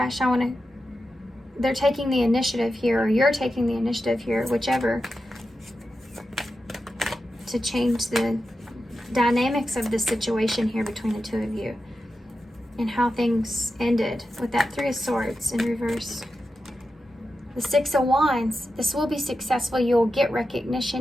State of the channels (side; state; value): both; normal; correlation 0.90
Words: They're taking the initiative here, or you're taking the initiative here, whichever, to change the dynamics of the situation here between the two of you, and how things ended with that Three of Swords in reverse. The Six of Wands. This will be successful. You'll get